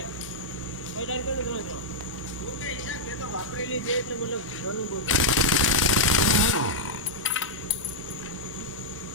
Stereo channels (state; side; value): normal; both; correlation -0.05